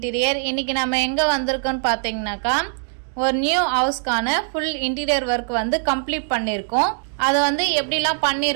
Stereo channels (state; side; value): silent; left; 60 dB below the other